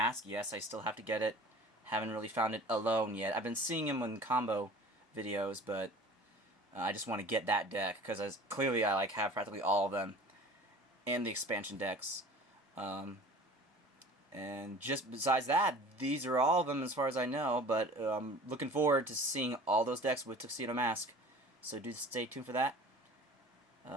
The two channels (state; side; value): normal; both; correlation 0.43